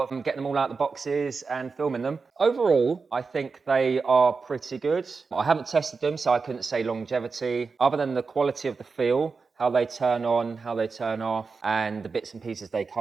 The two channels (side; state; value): left; quieter; 4.7 dB